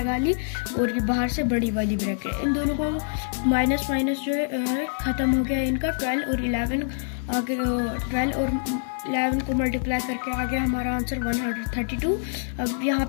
ली, और ये बाहर से बड़ी वाली ब्रैकेट। इन दोनों को माइनस माइनस जो है ख़त्म हो गया इनका। 12 और 11 आगे 12 और 11 को मल्टीप्लाई करके आ गया हमारा आंसर 132। अब यहाँ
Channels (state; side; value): silent; right; 61 dB below the other